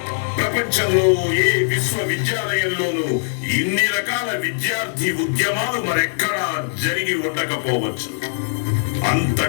ప్రపంచంలో ఏ విశ్వవిద్యాలయంలోనూ ఇన్ని రకాల విద్యార్థి ఉద్యమాలు మరెక్కడా జరిగి ఉండకపోవచ్చు.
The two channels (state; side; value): silent; right; 65 dB below the other